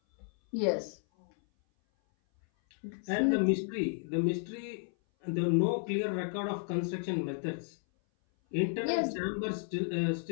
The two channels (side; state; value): right; silent; 56 dB below the other